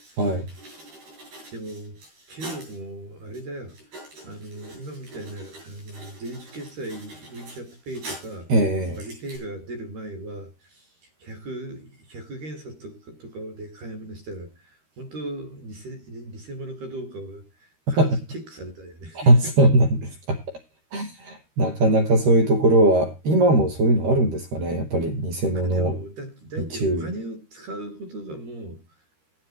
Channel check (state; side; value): late; left; 13 ms